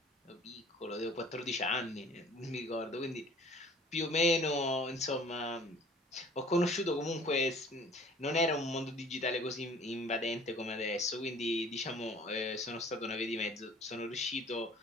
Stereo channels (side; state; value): both; normal; correlation 0.50